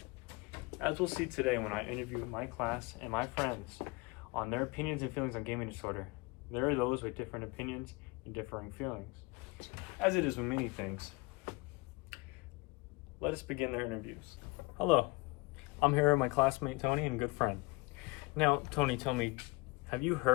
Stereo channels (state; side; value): quieter; right; 24.7 dB